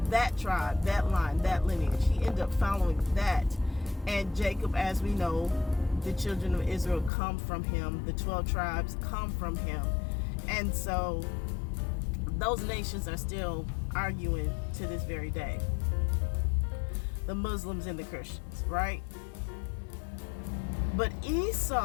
that tribe, that line, that lineage, he ended up following that. And Jacob, as we know, the children of Israel come from him. The 12 tribes come from him. And so those nations are still arguing to this very day. The Muslims and the Christians, right? But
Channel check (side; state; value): right; drops out; at 7.1 s